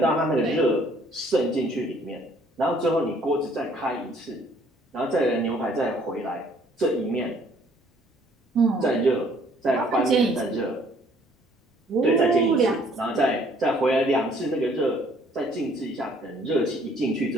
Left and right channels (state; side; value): normal; both; correlation 0.60